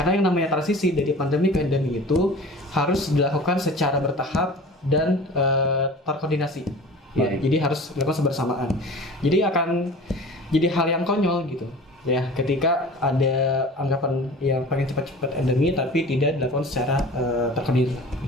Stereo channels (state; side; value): normal; both; correlation 0.40